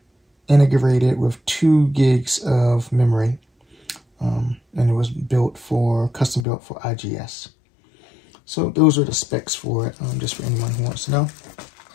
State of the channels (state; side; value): drops out; right; at 6.5 s